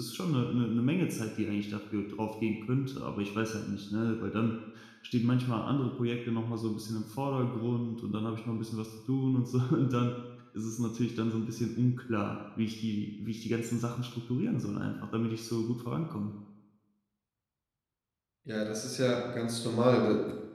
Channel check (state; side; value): identical; both; correlation 1.00